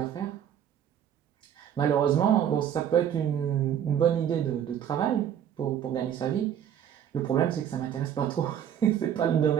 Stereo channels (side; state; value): left; quieter; 9.5 dB